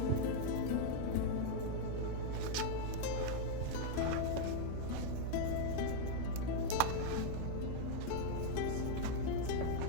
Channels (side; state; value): both; different; correlation 0.00